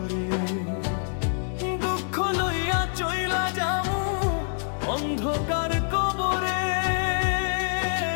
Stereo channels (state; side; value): silent; right; digital silence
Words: দুঃখ লইয়া চইলা যামু অন্ধকার কবরে।